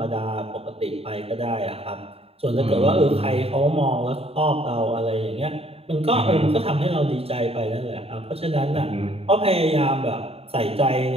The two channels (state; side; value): late; left; 0.29 ms